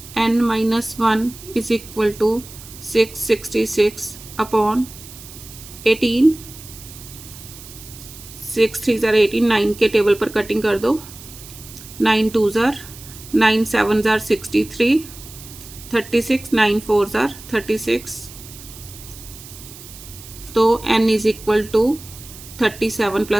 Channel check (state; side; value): noise; right; hiss, 17 dB below the sound